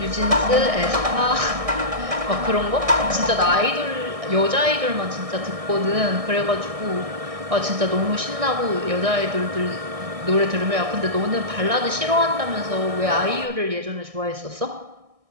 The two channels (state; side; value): late; left; 1.6 ms